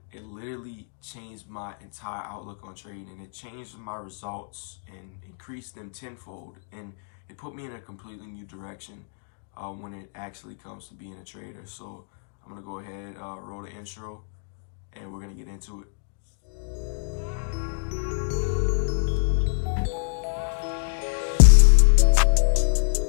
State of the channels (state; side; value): silent; right; digital silence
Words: it literally changed my entire outlook on trading, and it changed my results and increased them tenfold, and it put me in a completely new direction when it actually comes to being a trader. So I'm gonna go ahead, roll the intro, and we're gonna get into it.